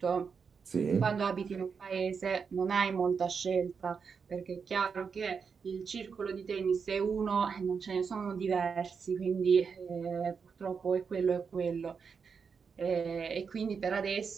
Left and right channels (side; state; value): left; quieter; 5.9 dB